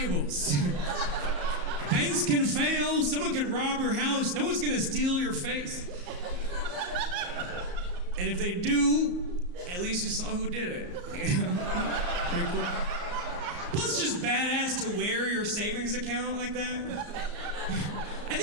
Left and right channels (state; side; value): late; left; 34 ms